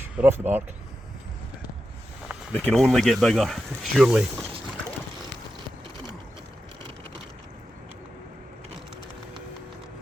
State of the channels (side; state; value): both; normal; correlation 0.90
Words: They're off the mark. They can only get bigger, surely.